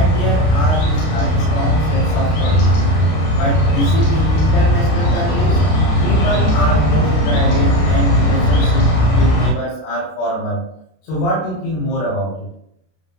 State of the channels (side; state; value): right; late; 32 ms